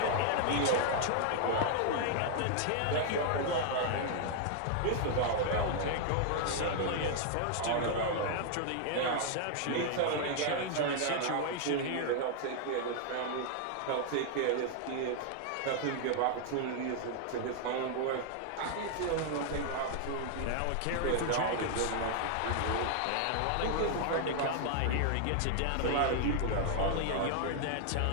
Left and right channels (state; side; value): different; both; correlation 0.00